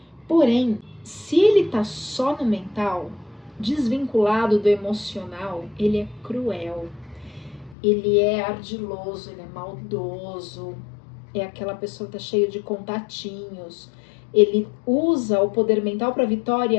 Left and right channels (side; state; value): right; drops out; at 7.8 s